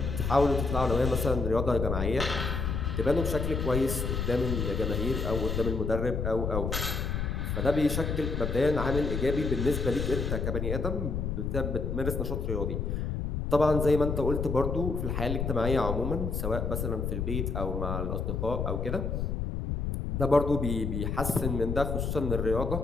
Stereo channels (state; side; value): noise; left; rumble, 1 dB below the sound